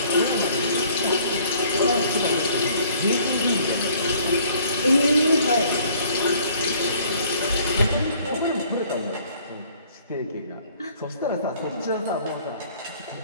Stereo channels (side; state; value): both; inverted; correlation -0.58